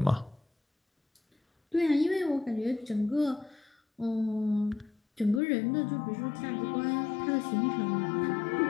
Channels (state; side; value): drops out; right; at 5.4 s